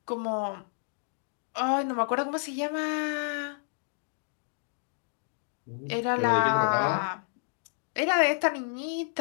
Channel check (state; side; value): silent; right; digital silence